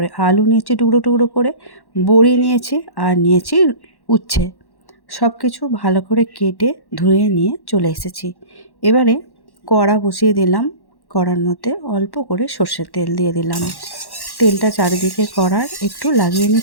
আলু নিয়েছি টুকরো টুকরো করে, বড়ি নিয়েছি আর নিয়েছি উচ্ছে। সব কিছু ভালো করে কেটে ধুয়ে নিয়ে চলে এসেছি। এবারে কড়া বসিয়ে দিলাম, কড়ার মধ্যে অল্প করে সর্ষের তেল দিয়ে দিলাম। তেলটা চারিদিকে কড়ার একটু লাগিয়ে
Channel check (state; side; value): late; right; 1.1 ms